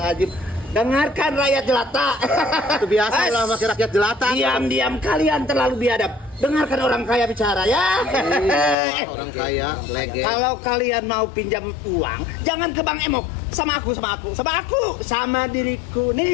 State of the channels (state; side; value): drops out; right; at 8.8 s